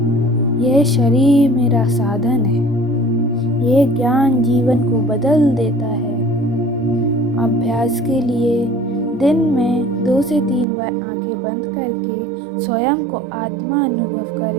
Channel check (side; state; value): left; drops out; at 10.7 s